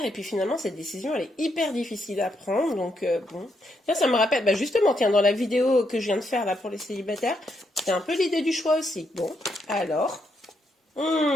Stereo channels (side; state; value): both; normal; correlation 0.78